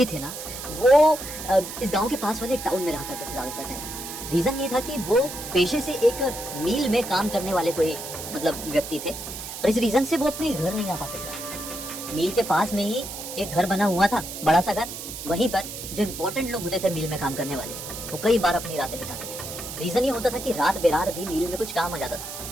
थे ना, वो इस गांव के पास वाले टाउन में रहा करते थे ज्यादातर टाइम। रीजन ये था कि वो पेशे से एक मिल में काम करने वाले कोई व्यक्ति थे और इस रीजन से वो अपने घर नहीं आ पाते थे। मिल के पास में ही एक घर बना हुआ था, बड़ा सा घर। वहीं पर जो इम्पोर्टेंट लोग होते थे मिल में काम करने वाले, वो कई बार अपनी रातें बिताते थे। रीजन ये होता था कि रात बेरात भी मिल में कुछ काम आ जाता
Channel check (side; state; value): right; noise; hiss, 9 dB below the sound